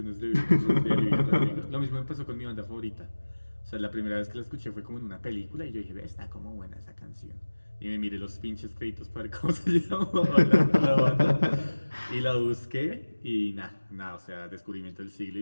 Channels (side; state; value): both; inverted; correlation -1.00